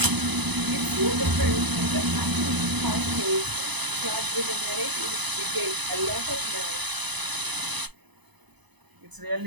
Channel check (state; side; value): late; left; 1.0 ms